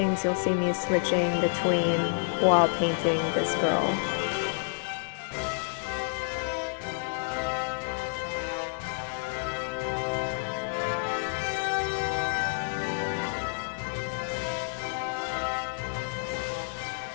you'll see me switching between while painting this girl.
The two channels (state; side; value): silent; right; digital silence